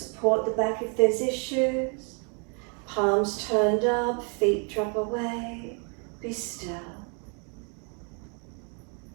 the back if there's issues. Palms turned up, feet drop away. Be still.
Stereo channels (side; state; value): left; quieter; 37.6 dB